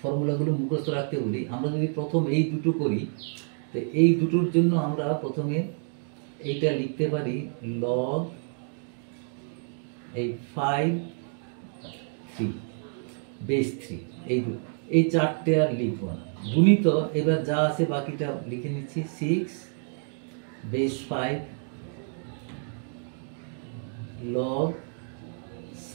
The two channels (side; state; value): left; silent; 59 dB below the other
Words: ফর্মুলাগুলো মুখস্থ রাখতে বলি। আমরা যদি প্রথম এই দুটো করি, তো এই দুটোর জন্য আমরা প্রথমে এইটা লিখতে পারি log এই 5 3 বেস 3, এই চারটে আর লিখব না। গুণিত এবার যা আছে বাকিটা লিখে নিচ্ছি 6 বেস 5 log